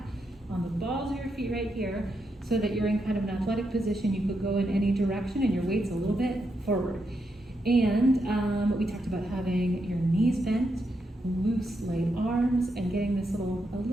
on the balls of your feet right here so that you're in kind of an athletic position. You could go in any direction and your weight's a little bit forward. And we talked about having your knees bent, loose, light arms, and getting this a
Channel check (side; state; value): both; normal; correlation 0.82